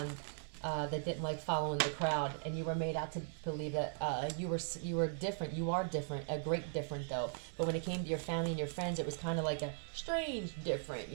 that didn't like following the crowd, and you were made out to believe that you were different. You are different, a great different though. But when it came to your family and your friends, it was kind of like a strange different.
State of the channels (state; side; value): silent; left; 52 dB below the other